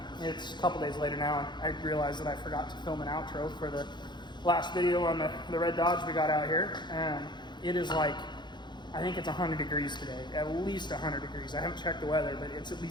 it's a couple days later now, and I realized that I forgot to film an outro for the last video on the red Dodge we got out here. It is like, I think it's 100 degrees today, at least 100 degrees. I haven't checked the weather, but it's at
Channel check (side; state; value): right; late; 0.22 ms